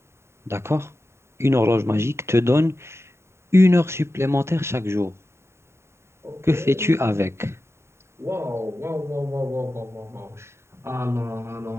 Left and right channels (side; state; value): left; late; 0.13 ms